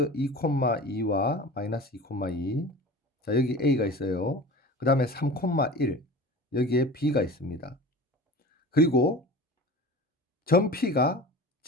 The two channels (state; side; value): normal; both; correlation 0.37